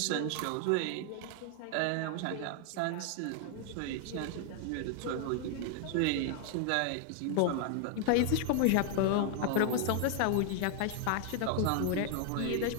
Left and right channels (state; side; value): different; both; correlation 0.00